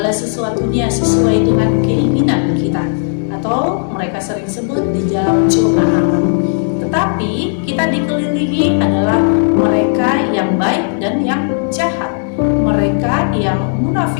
sesuatunya sesuai dengan keinginan kita, atau mereka sering sebut di dalam zona alam. Tetapi kita dikelilingi adalah mereka yang baik dan yang jahat, mereka yang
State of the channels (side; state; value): right; silent; digital silence